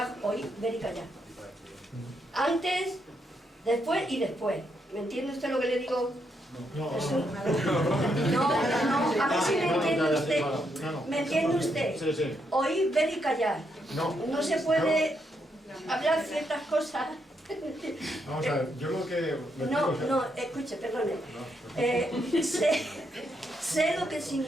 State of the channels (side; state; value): both; normal; correlation 0.78